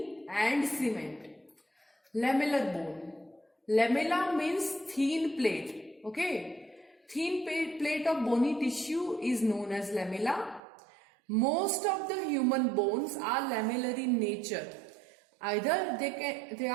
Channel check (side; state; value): left; drops out; at 10.6 s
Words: and cement. Lamellar bone. Lamella means thin plate. Okay, thin plate of bony tissue is known as lamella. Most of the human bones are lamellar in nature. Either they